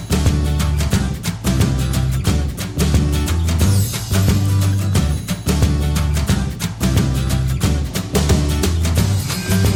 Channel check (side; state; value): both; identical; correlation 1.00